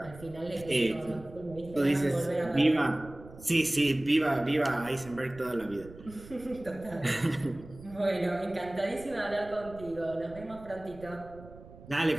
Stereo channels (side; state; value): right; noise; rumble, 18 dB below the sound